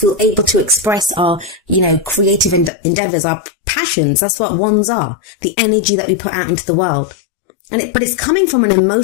able to express our, creative endeavors, our passions. That's what wands are. The energy that we put out into the world. But it's coming from an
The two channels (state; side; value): drops out; right; at 2.7 s